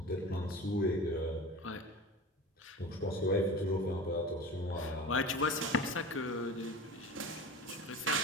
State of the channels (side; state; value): both; normal; correlation 0.33